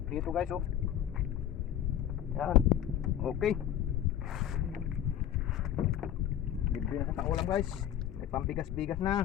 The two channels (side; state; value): right; quieter; 10.9 dB